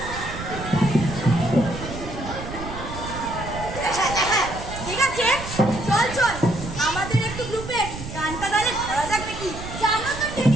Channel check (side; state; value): right; noise; rumble, 9 dB below the sound